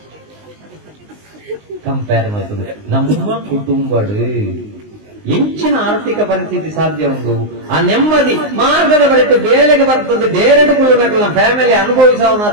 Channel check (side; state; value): left; late; 19 ms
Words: ಕಂಪೇರ್ ಮಾಡ್ತದೆ ನಮ್ಮ ಕುಟುಂಬಡು ಹೆಚ್ಚಿನ ಆರ್ಥಿಕ ಪರಿಸ್ಥಿತಿ ಸಾಧ್ಯ ಉಂಟು ಆ ನೆಮ್ಮದಿ ಮಾರ್ಗದ ಬಳಿಕ ಬೇಲೆಗೆ ಬರ್ತದೆ ಬೇರೆಡು ಕುಲುನಗಳ ಫ್ಯಾಮಿಲಿ